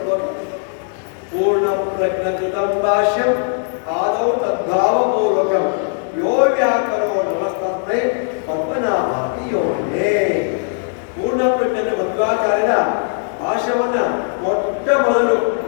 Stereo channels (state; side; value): silent; right; digital silence